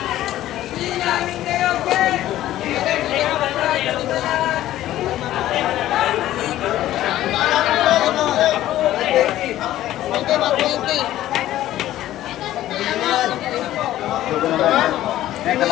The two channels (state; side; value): quieter; right; 13.8 dB